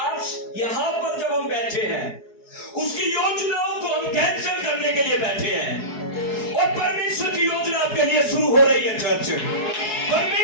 यहां पर जब हम बैठे हैं, उसकी योजनाओं को हम कैंसिल करने के लिए बैठे हैं और परमेश्वर की योजना आपके लिए शुरू हो रही है। चर्च,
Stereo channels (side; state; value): right; late; 4.7 ms